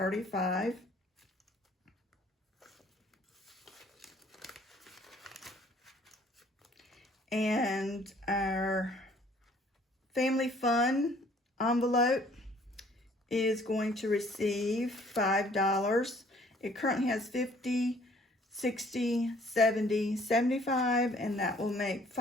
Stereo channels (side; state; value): both; normal; correlation 0.58